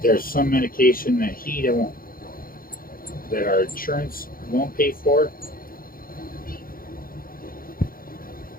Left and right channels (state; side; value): late; right; 0.42 ms